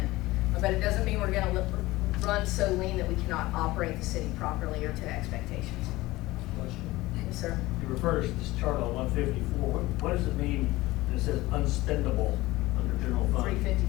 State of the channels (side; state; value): right; quieter; 19.0 dB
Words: But it doesn't mean we're gonna run so lean that we cannot operate the city properly or to expectations. Question. Yes, sir. You refer to this chart on 154, what does it mean that it says unspendable under general fund?